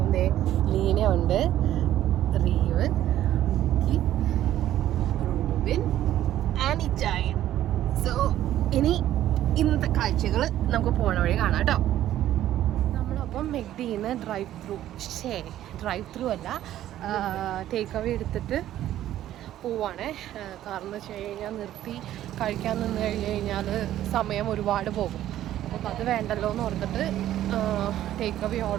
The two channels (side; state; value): left; quieter; 12.7 dB